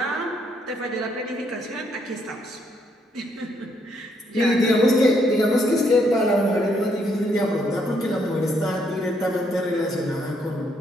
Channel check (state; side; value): normal; both; correlation 0.73